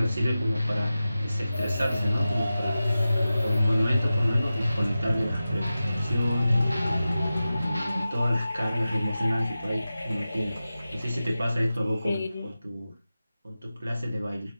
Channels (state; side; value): inverted; both; correlation -0.94